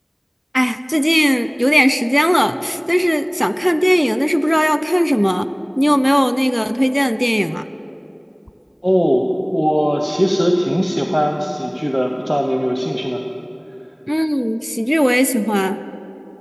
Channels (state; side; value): identical; both; correlation 1.00